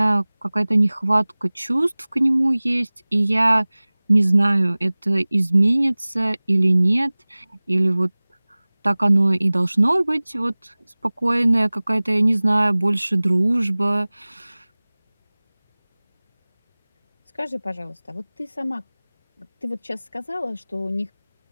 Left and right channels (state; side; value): inverted; both; correlation -1.00